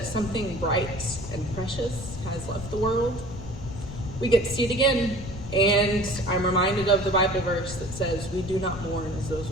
something bright and precious has left the world, we get to see it again. And I'm reminded of the Bible verse that says, we do not mourn as those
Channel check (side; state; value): left; noise; rumble, 10 dB below the sound